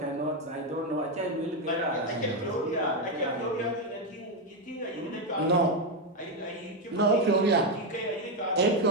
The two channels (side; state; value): both; normal; correlation 0.06